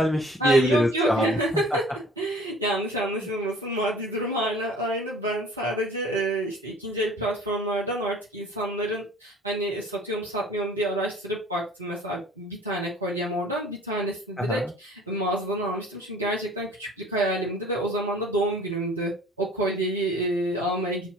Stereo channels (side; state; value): both; normal; correlation 0.49